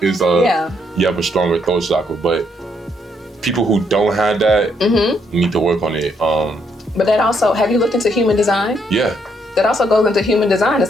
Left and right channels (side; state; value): both; normal; correlation 0.74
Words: you have a stronger throat chakra. But people who don't have that need to work on it. But that also, have you looked into human design? Yeah. That also goes into human design.